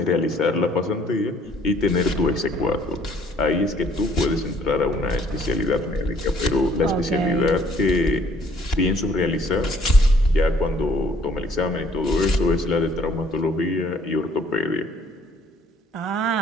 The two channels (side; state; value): both; normal; correlation 0.60